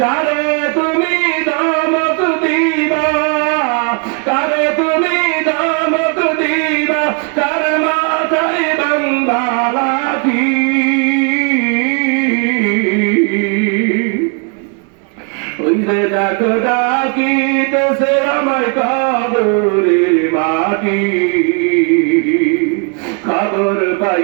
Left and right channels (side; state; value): left; quieter; 36.8 dB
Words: কারে তুমি দামত দিবা, কারে তুমি দামত দিবা, কার মাথায় বাংলাটি। ওই যে ডাকো ডাকিতেছে আমায় কবরের মাটি। খবর